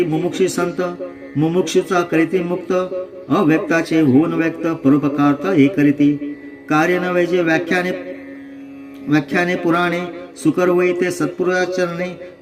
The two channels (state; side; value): identical; both; correlation 1.00